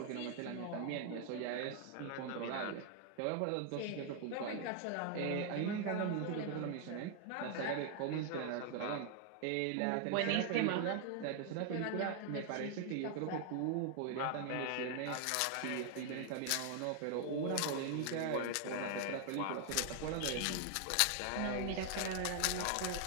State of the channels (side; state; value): both; different; correlation 0.00